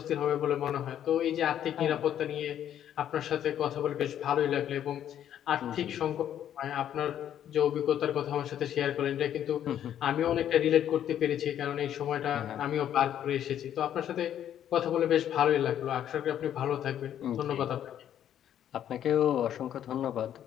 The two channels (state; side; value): quieter; right; 10.4 dB